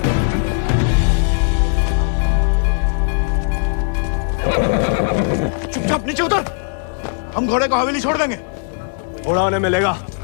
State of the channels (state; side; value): silent; right; digital silence